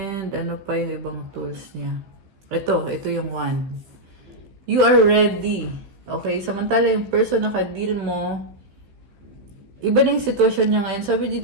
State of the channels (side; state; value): left; late; 15 ms